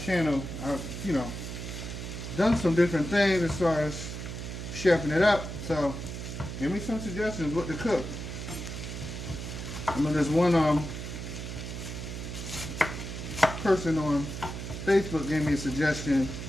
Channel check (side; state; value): right; noise; hum, 7 dB below the sound